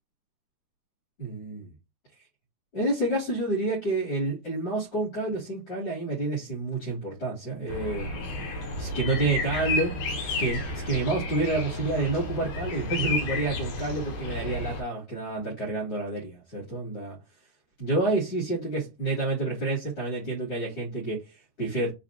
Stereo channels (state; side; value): late; right; 13 ms